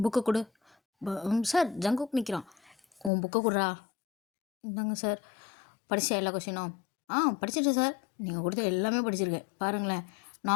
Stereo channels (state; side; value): drops out; right; at 3.1 s